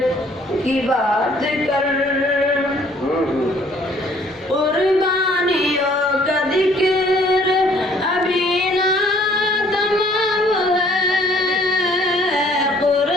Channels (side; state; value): both; normal; correlation 0.59